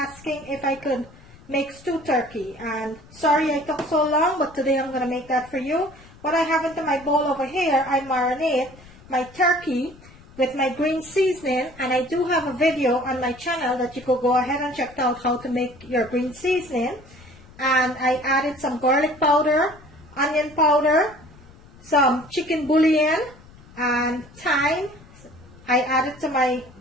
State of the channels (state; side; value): noise; left; rumble, 23 dB below the sound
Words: if I could make stewed turkey, and sorry I took so long, but today I'm going to make that for you. What I have into my bowl over here, I marinate my turkey with my green seasoning, and I do have a video on my channel that you could go ahead and check out how to make your green seasoning. And I added some garlic powder, onion powder, some chicken bouillon, and thyme. I added to my,